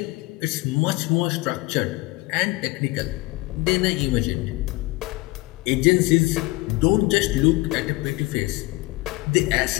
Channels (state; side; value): quieter; right; 21.9 dB